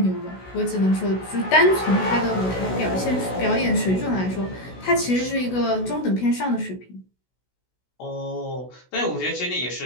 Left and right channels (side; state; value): right; late; 16 ms